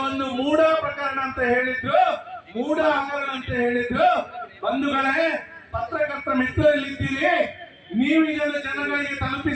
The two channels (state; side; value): identical; both; correlation 1.00